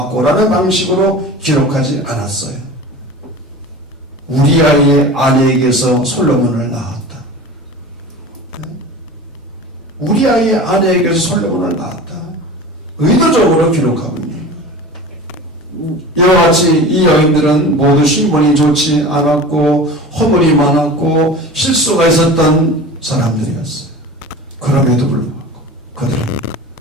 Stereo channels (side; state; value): both; normal; correlation 0.36